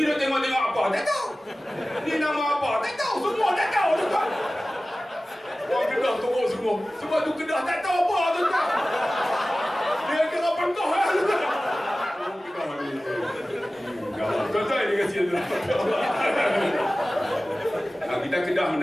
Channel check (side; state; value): both; normal; correlation 0.96